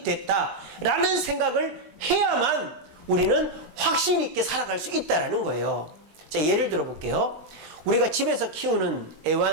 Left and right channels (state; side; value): late; left; 20 ms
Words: 됐다라는 생각을 해야만 우리는 확신 있게 살아갈 수 있다라는 거예요. 자, 예를 들어 볼게요. 우리가 집에서 키우는